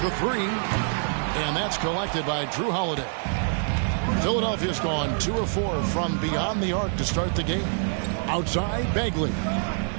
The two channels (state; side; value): silent; left; 61 dB below the other